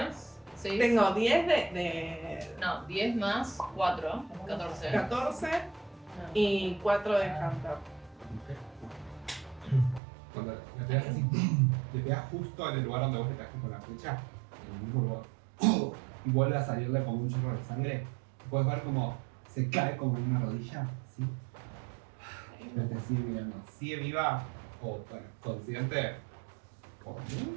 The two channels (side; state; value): left; drops out; at 10.0 s